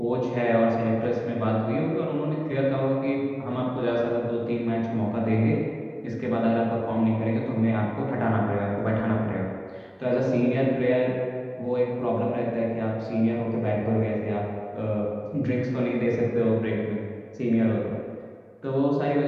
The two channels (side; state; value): both; identical; correlation 1.00